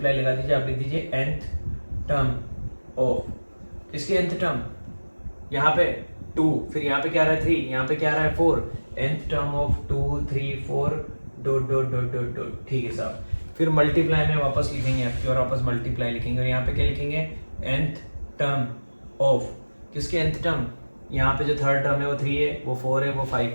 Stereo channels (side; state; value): both; inverted; correlation -1.00